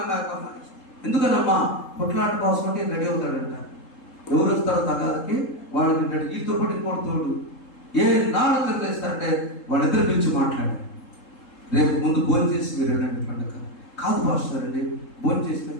ఎందుకనమ్మా? కొట్లాట కోసం అంటే రెడీ అవుతాడంట. ఎవరు వస్తారో తగాదకి వాడు తింటాడు. ఈతో పాటు ఇంకోటి తోడు. ఏ నాడు తినలేస్తారంటే వాళ్ళిద్దరు పిలిచి మాట్లాడారు. రేపు ముందు భోజనం చేసి మీరు వెళ్ళండి పండుగ. కాదు పాస్టర్ అండి, భోజనం చేస్తే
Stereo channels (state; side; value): late; right; 3.7 ms